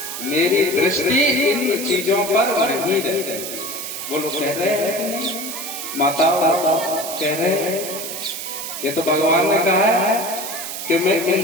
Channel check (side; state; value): right; noise; hiss, 7 dB below the sound